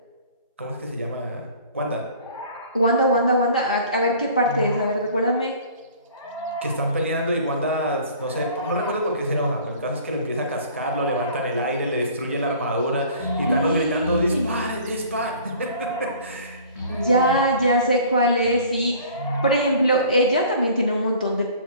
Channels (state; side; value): inverted; both; correlation -0.49